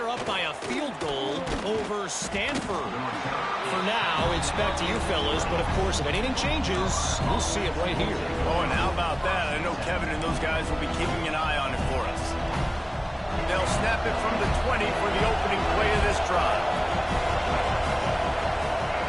up by a field goal over Stanford. For now, it's back to you fellas, but of course, if anything changes, we'll see it right here. Oh, and how about that? I know Kevin and those guys will be keeping an eye on it for us. They'll snap it from the 20 for the opening play of this drive.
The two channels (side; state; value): both; identical; correlation 1.00